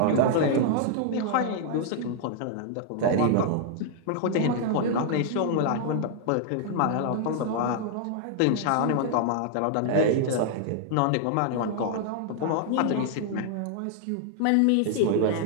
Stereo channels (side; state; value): both; different; correlation -0.01